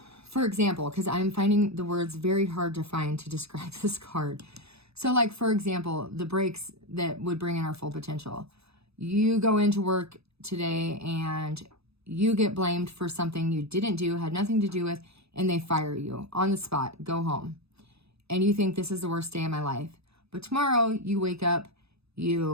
for example, because I'm finding the words very hard to find to describe this card. So like, for example, the breaks that would bring in our full potential. You go into work today and you get blamed for something you didn't do, had nothing to do with, and they fire you on the spot, go home. And you think this is the worst day of my life. But tomorrow you wake up,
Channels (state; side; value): late; left; 0.79 ms